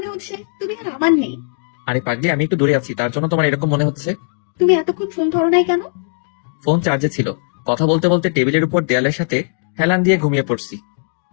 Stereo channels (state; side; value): silent; right; digital silence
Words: হচ্ছে তুমি আর আমার নেই। আরে পাগলি, আমি একটু দূরে আছি, তার জন্য তোমার এরকম মনে হচ্ছে। তুমি এতক্ষণ ফোন ধরো নাই কেন? ফোন চার্জে ছিল। কথা বলতে বলতে টেবিলের উপর দেয়ালের সাথে হেলান দিয়ে ঘুমিয়ে পড়ছি।